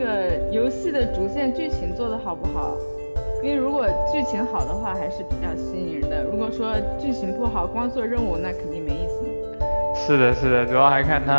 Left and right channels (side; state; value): both; inverted; correlation -1.00